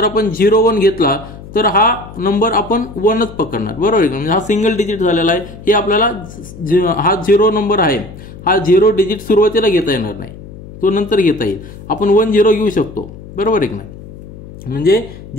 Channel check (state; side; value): noise; left; hum, 16 dB below the sound